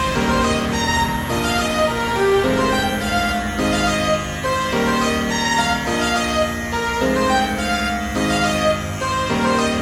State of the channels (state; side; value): identical; both; correlation 1.00